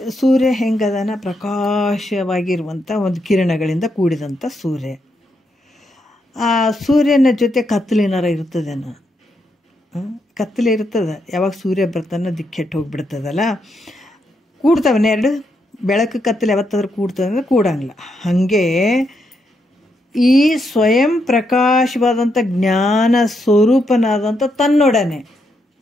ಸೂರ್ಯ ಹೆಂಗದನ ಪ್ರಕಾಶವಾಗಿರುವಂಥ ಒಂದು ಕಿರಣಗಳಿಂದ ಕೂಡಿದಂಥ ಸೂರ್ಯ. ಆ ಸೂರ್ಯನ ಜೊತೆ ಕತ್ತಲಿನಾರ ಇರ್ತದೇನೋ, ಕತ್ತಲೆ ಇರ್ತದೆ. ಯಾವಾಗ ಸೂರ್ಯ ಬರ್ತಾನೆ ದಿಕ್ಕೆಟ್ಟು ಹೋಗಿಬಿಡ್ತದಲ್ಲ, ಕೂಡ್ತಾವನ್ನ ಎರಡು ಬೆಳಕು ಕತ್ತಲೆ ಯಾವತ್ತಾದ್ರೂ ಕೂಡ್ತದೆ ಅಂದರೆ ಕೂಡಂಗಿಲ್ಲ. ಹಾಗೆ ಈ ಸ್ವಯಂ ಪ್ರಕಾಶವಾದಂಥ ಜ್ಞಾನ ಸ್ವರೂಪನಾದಂಥ ತನ್ನೊಡನೆ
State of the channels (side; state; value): both; normal; correlation 0.80